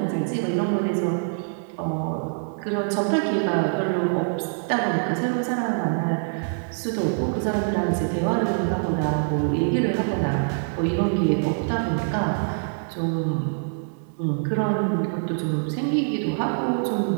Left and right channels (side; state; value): left; silent; digital silence